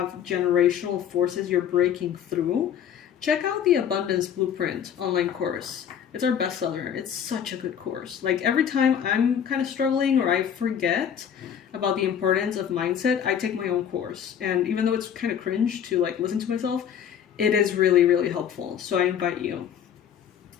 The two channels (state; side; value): quieter; right; 8.7 dB